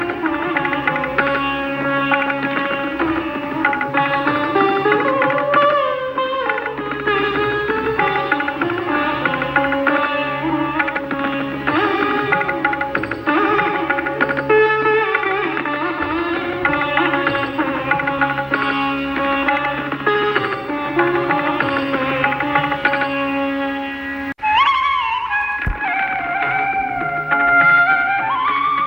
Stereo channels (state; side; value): identical; both; correlation 1.00